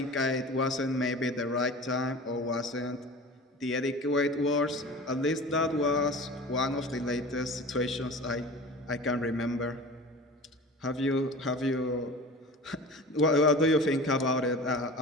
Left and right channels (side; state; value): both; normal; correlation 0.37